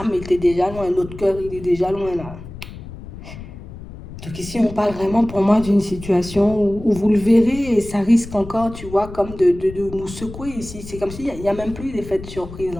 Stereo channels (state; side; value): noise; left; rumble, 13 dB below the sound